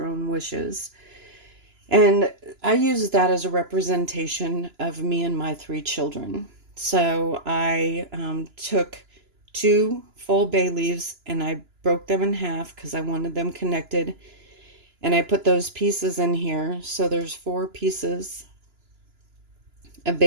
own wishes. And I use that as a representation of me and my 3 children. So I took 2 full bay leaves and I broke them in half because I wanted them connected. And I put those pieces in here. So there's 4 pieces of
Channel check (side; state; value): left; late; 2.9 ms